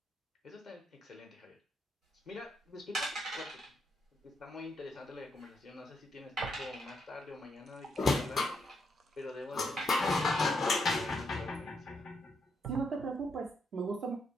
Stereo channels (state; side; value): normal; both; correlation 0.78